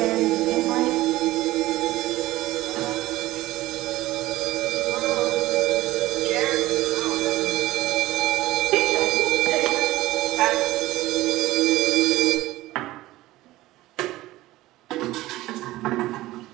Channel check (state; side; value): quieter; left; 17.1 dB